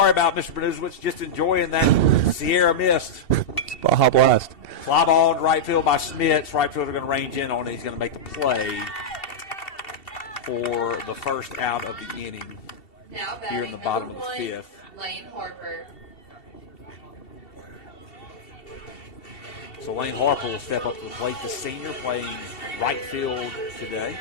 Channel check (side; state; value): right; late; 2.7 ms